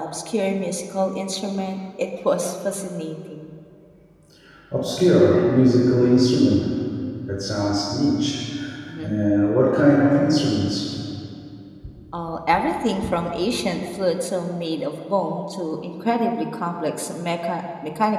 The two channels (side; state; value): both; identical; correlation 1.00